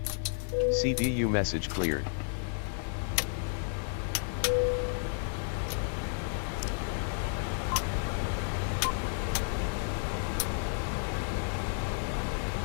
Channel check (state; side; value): silent; right; 56 dB below the other